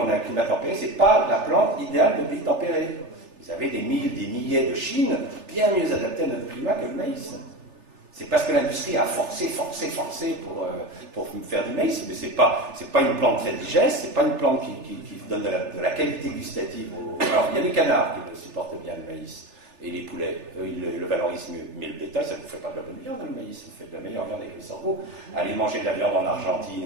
a un climat tempéré, c'est pas la plante idéale de pays tempéré. Vous avez des milliers de Chine bien mieux adaptés à notre climat que le maïs. C'est parce que l'industrie a forcé pour faire du maïs, mais c'est pas une plante très digeste, c'est pas une plante qui donne de la qualité gustative. Alors, il y a les canards qui le supportent bien, le maïs, et les poulets, eux, ils le valorisent mieux. Mais le bétail, ça ne vous fait pas de la bonne viande, le maïs, ça vous fait de la meilleure viande avec le sorgho. Allez manger de la viande en Argentine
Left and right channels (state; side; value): late; left; 3.4 ms